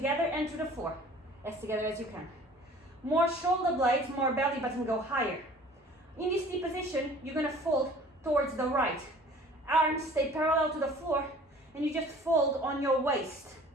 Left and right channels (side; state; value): both; normal; correlation 0.49